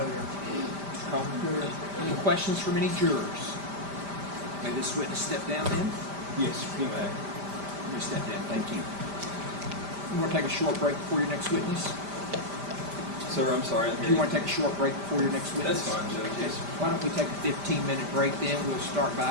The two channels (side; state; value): left; late; 5.0 ms